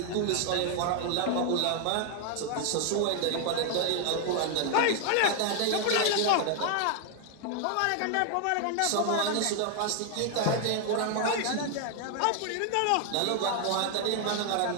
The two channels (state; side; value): different; both; correlation 0.00